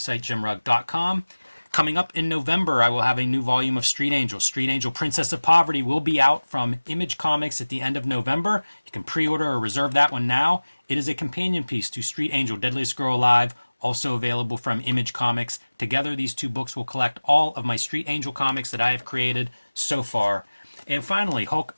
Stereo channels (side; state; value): both; inverted; correlation -1.00